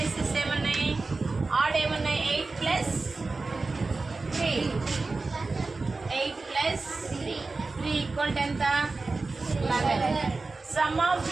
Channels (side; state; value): left; quieter; 3.7 dB